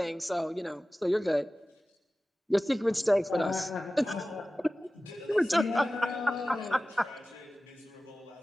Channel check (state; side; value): normal; both; correlation 0.96